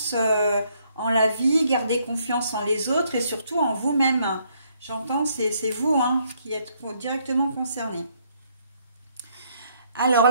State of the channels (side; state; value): both; inverted; correlation -0.70